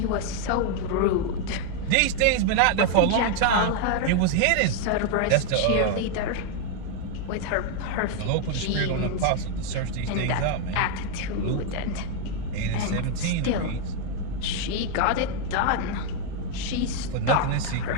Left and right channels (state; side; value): different; both; correlation 0.00